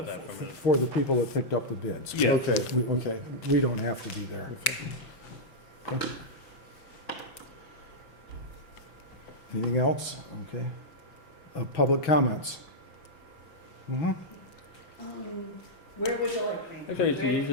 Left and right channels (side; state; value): right; late; 5.9 ms